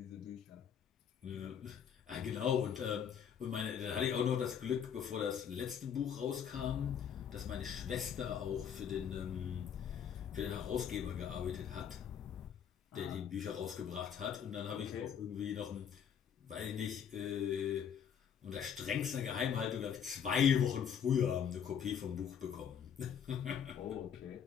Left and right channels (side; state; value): right; quieter; 8.1 dB